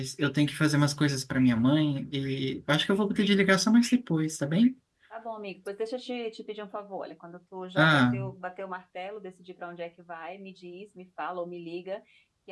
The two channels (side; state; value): both; identical; correlation 1.00